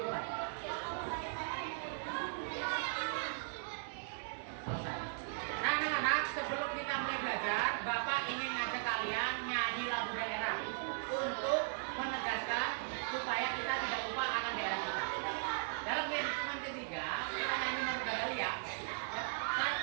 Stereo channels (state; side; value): silent; left; digital silence